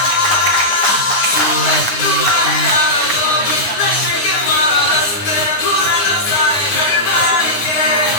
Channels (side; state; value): right; late; 9.6 ms